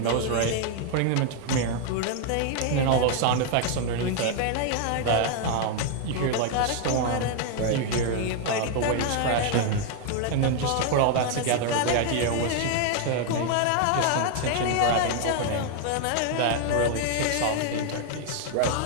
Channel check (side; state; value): both; different; correlation 0.00